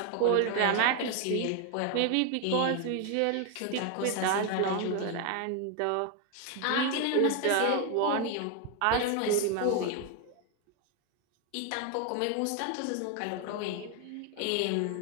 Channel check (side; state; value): both; different; correlation 0.01